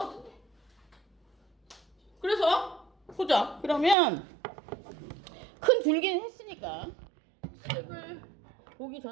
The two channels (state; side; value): drops out; left; at 4.0 s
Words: 같은데. 그래서 보자. 그러면 큰 줄기는 했으니까 책을 보기